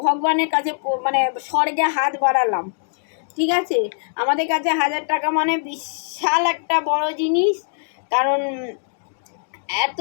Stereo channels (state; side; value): silent; right; digital silence